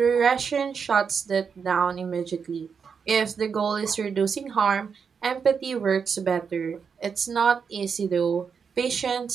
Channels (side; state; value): left; quieter; 6.2 dB